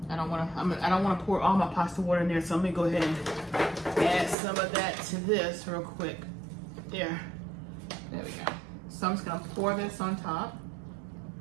I don't want to pour all my pasta water in there, so I'm gonna go ahead and add some of that to this real quick. There we go. So I'm just gonna pour this on top.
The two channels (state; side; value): drops out; left; at 4.4 s